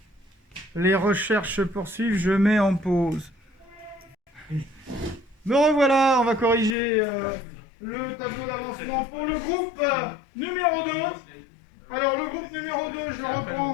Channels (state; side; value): drops out; right; at 6.8 s